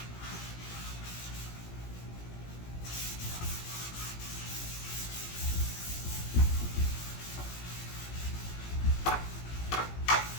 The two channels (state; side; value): late; right; 17 ms